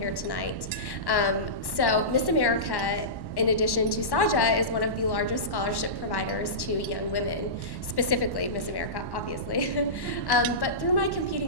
tonight. So Miss America, in addition to Saja, is one of the largest scholarship providers to young women, specifically Miss America, obviously. But through my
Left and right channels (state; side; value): late; right; 1.1 ms